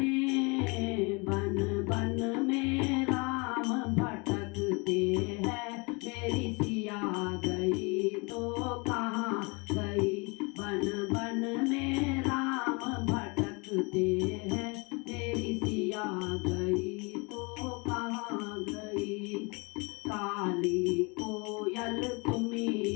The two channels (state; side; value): quieter; right; 29.3 dB